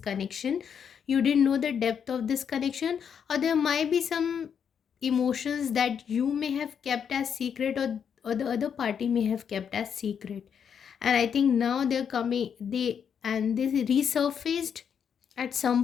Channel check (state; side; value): quieter; right; 7.6 dB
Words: You didn't know the depth of this connection, or there might be some emotions that you may have kept as secret, or the other party may have kept as secret. And I think now they're coming, they resurfaced at